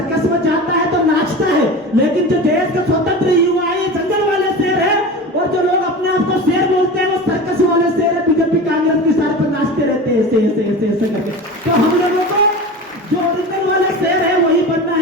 में जाता है तो नाचता है। लेकिन जो देश के स्वतंत्र युवा है, जंगल वाले शेर है, और जो लोग अपने आप को शेर बोलते हैं, वो सर्कस वाले शेर है। बीजेपी कांग्रेस की सार पर नाचते रहते हैं ऐसे ऐसे ऐसे ऐसे करके। तो हम लोगों को जो ओरिजिनल वाला शेर है वही बनना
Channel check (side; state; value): both; normal; correlation 0.31